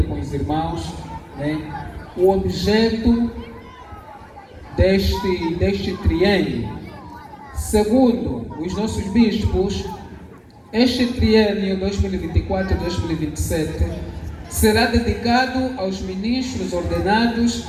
com os irmãos o objeto deste triênio. Segundo os nossos bispos, este triênio 2024-2027 será dedicado aos ministros ordenados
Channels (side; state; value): both; identical; correlation 1.00